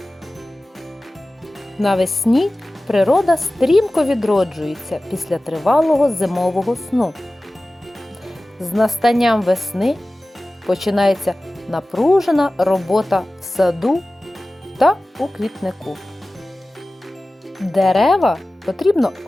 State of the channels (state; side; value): normal; both; correlation 0.97